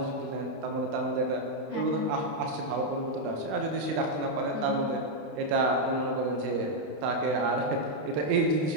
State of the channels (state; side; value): late; left; 28 ms